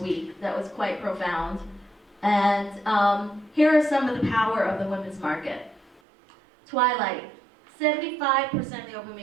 week that was quite profound. And here are some of the power of the women's market. Twilight, 75% of the open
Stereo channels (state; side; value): drops out; left; at 6.0 s